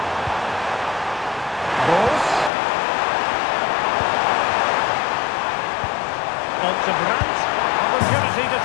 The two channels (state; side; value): drops out; right; at 2.5 s